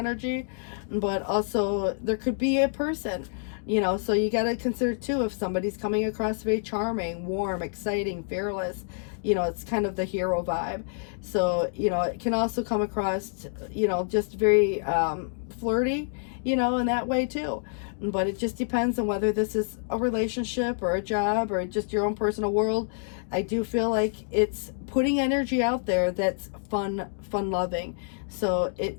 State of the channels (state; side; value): silent; right; digital silence